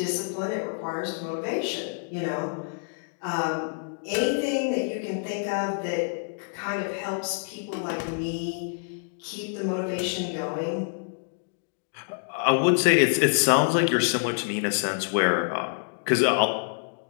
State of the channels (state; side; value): silent; right; digital silence